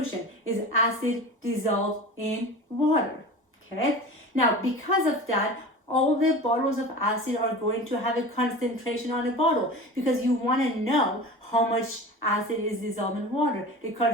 is acid dissolved in water, okay? Now, because of that, all the bottles of acid are going to have a concentration on a bottle because you want to know how much acid is dissolved in water. The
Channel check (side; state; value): both; normal; correlation 0.34